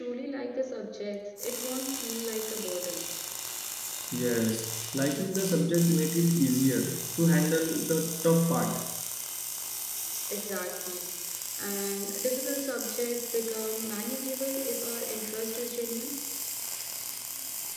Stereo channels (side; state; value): both; identical; correlation 1.00